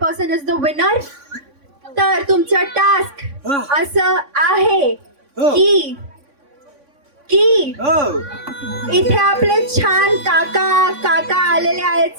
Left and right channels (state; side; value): late; left; 3.5 ms